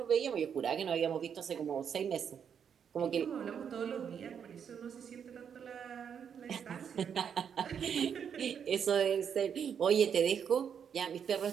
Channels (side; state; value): left; quieter; 7.7 dB